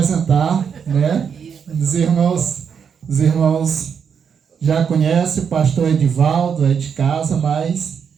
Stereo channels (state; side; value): quieter; left; 7.0 dB